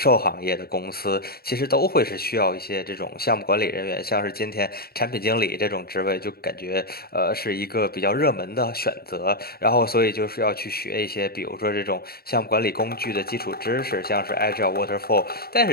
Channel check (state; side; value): late; right; 0.45 ms